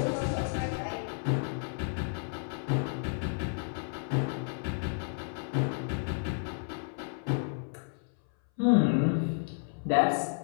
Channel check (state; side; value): silent; right; 57 dB below the other